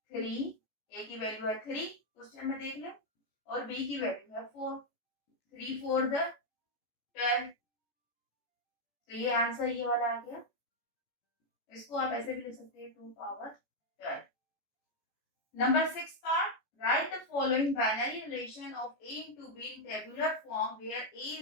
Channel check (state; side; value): late; right; 14 ms